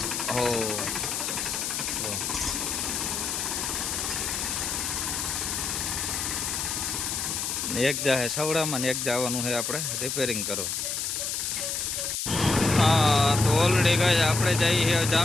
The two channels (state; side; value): noise; left; hiss, 2 dB below the sound